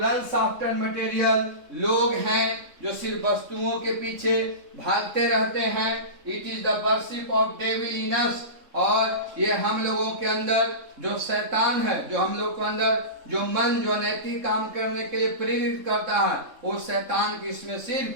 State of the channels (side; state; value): left; late; 3.7 ms